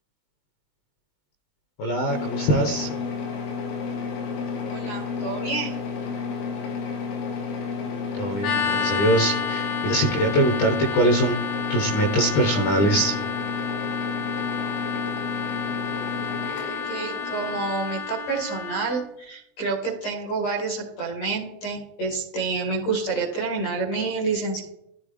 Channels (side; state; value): right; late; 20 ms